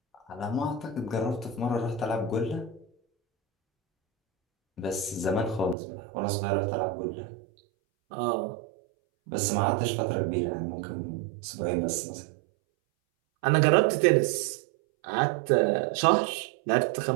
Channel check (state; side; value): drops out; left; at 5.8 s